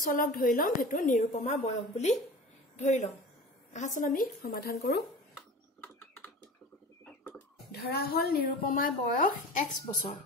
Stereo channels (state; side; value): normal; both; correlation 0.36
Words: চলক ধৰি লম হেতু নিৰুপমাৰ বয়স বুলি ধৰি লম আহাচোন আমি সমাধান কৰো ধৰা হল নিৰুপমাৰ বয়স x বছৰ